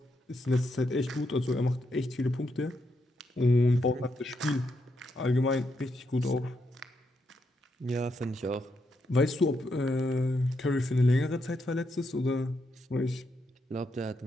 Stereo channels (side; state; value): both; normal; correlation 0.81